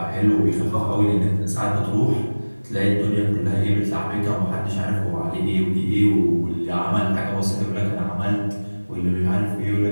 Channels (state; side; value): inverted; both; correlation -1.00